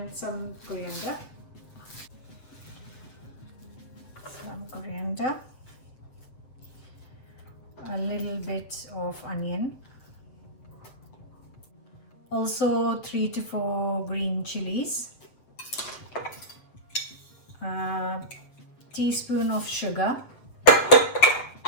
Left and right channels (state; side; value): late; right; 7.9 ms